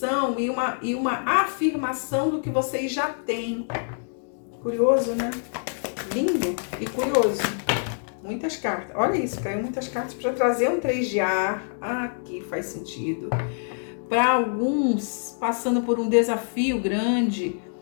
e uma afirmação do que vocês já têm. Curioso, né? Lindo e curioso. Muitas cartas. Olha isso, caiu muitas cartas para trazer um 3 de ar. Aqui faz sentido. Para alguns, passando por um desafio grande,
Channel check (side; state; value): right; silent; digital silence